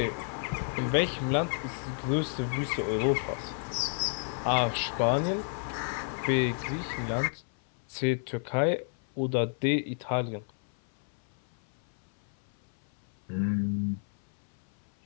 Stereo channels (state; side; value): silent; right; 57 dB below the other